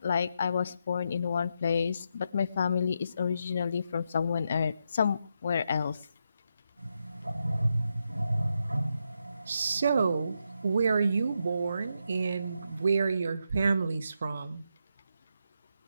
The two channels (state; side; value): inverted; both; correlation -0.83